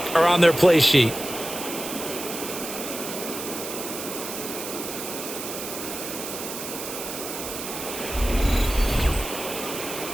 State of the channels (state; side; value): noise; right; hiss, 7 dB below the sound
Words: are on their play sheet.